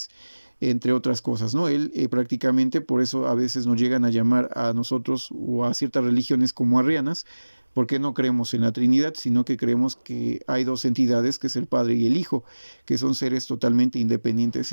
entre otras cosas, ¿no? Él prácticamente, por eso a veces nos llegan a llamar a nosotros o a ciertas religiones como arrianas, porque no creemos en la Trinidad, sino que creemos que hay dos entidades, que es el Padre y el Hijo, que son seres totalmente independientes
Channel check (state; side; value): inverted; both; correlation -1.00